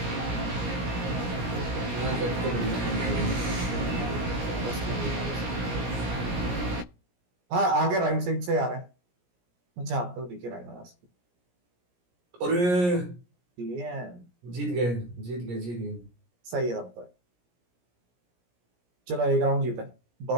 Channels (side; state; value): left; late; 17 ms